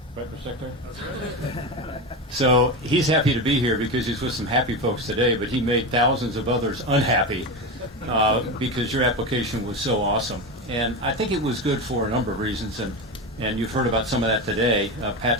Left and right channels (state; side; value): normal; both; correlation 0.20